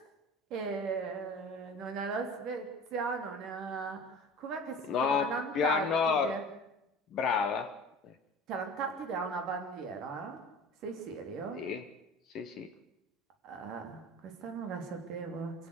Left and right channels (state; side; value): normal; both; correlation 0.39